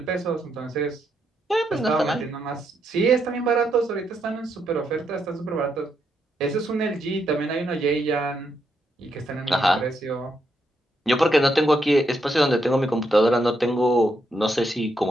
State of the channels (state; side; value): normal; both; correlation 0.79